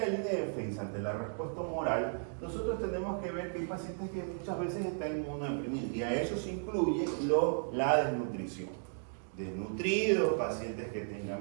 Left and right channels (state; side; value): silent; left; digital silence